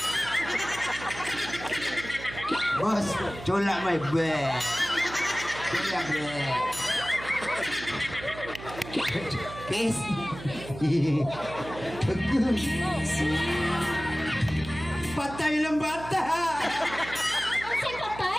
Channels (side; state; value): right; noise; hum, 13 dB below the sound